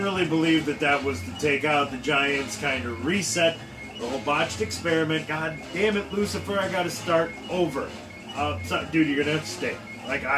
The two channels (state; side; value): identical; both; correlation 1.00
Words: believe that was to take out the giants, kind of reset the whole botched experiment. God damn it, Lucifer, I gotta start over. Dude, you're gonna have to stay. Like,